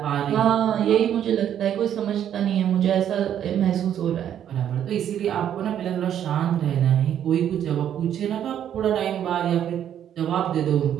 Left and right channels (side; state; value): left; quieter; 10.0 dB